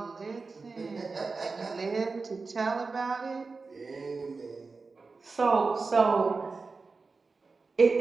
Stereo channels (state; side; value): quieter; left; 4.2 dB